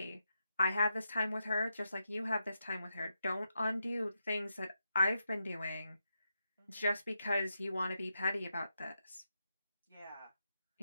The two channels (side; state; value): both; inverted; correlation -0.86